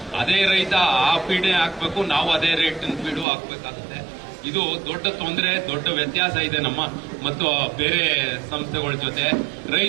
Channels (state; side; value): drops out; left; at 3.2 s